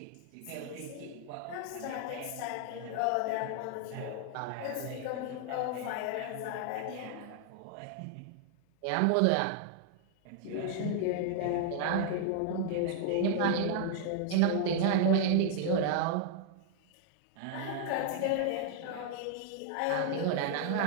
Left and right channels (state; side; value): different; both; correlation 0.00